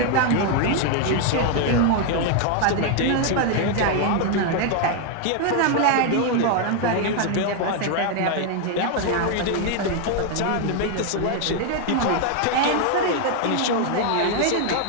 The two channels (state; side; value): different; both; correlation 0.00